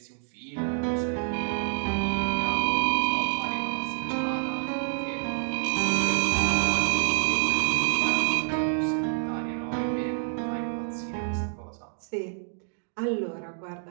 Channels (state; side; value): silent; left; digital silence